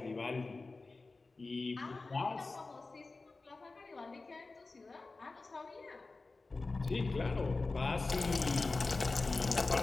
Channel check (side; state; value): right; quieter; 3.6 dB